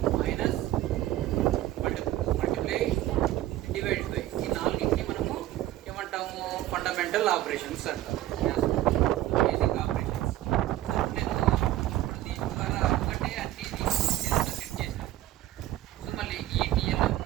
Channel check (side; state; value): left; quieter; 14.6 dB